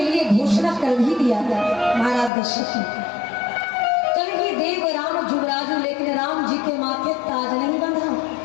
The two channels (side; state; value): right; drops out; at 2.3 s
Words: लिए घोषणा कर भी दिया था महाराज दशरथ ने। देव राम जुगराजू, लेकिन राम जी के माथे ताज नहीं बंधा।